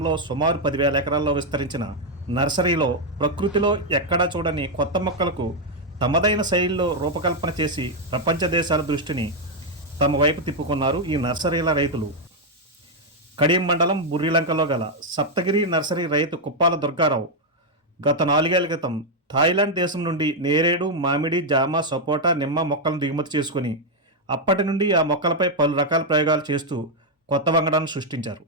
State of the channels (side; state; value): both; normal; correlation 0.00